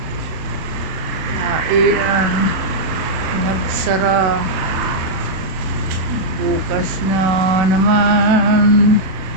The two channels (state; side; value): late; left; 36 ms